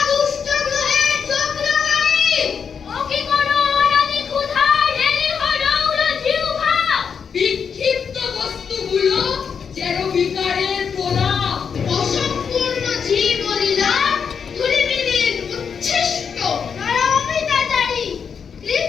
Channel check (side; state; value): right; quieter; 6.6 dB